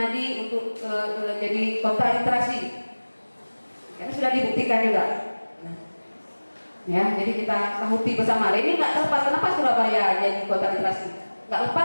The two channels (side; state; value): both; inverted; correlation -1.00